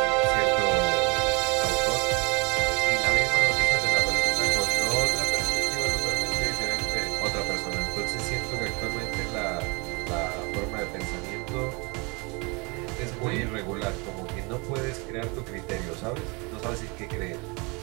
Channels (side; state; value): left; quieter; 29.2 dB